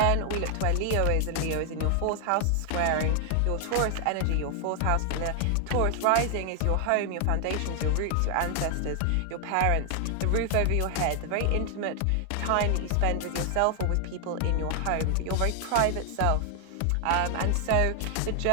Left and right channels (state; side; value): different; both; correlation 0.00